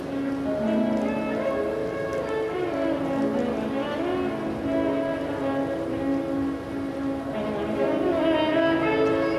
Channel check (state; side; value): identical; both; correlation 1.00